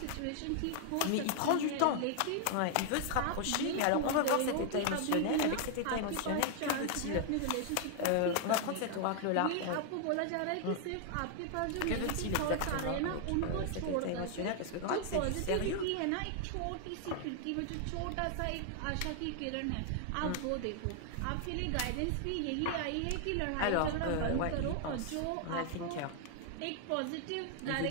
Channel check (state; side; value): different; both; correlation 0.00